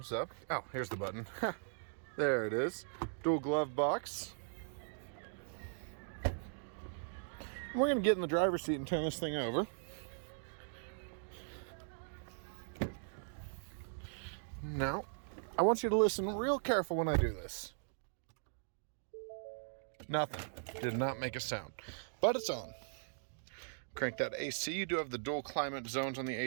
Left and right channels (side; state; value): left; silent; digital silence